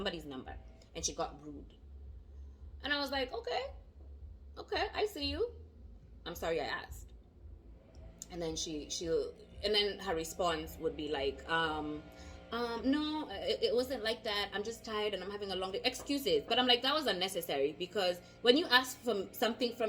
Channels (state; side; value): identical; both; correlation 1.00